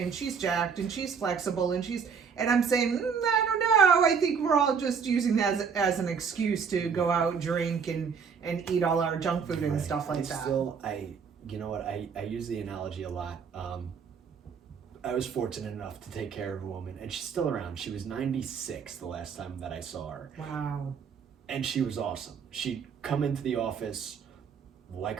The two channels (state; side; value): quieter; left; 6.3 dB